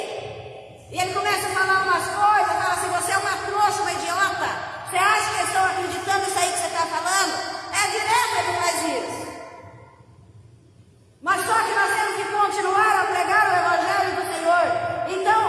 e ele começa a falar umas coisas, fala assim, você é uma trouxa, uma idiota. Você acha que eles estão acreditando nisso aí que você está falando? É direto ele faz isso. Mas só que nós temos que continuar a pregar o Evangelho do Senhor. Então,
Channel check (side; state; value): both; identical; correlation 1.00